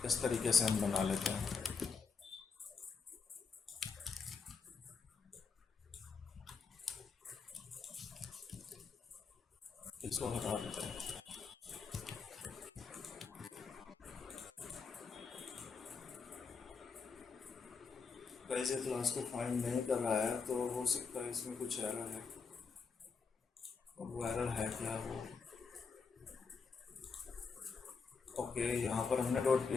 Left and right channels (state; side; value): quieter; right; 5.2 dB